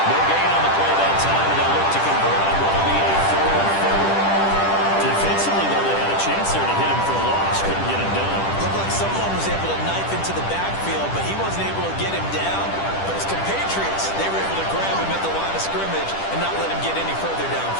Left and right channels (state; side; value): late; right; 10 ms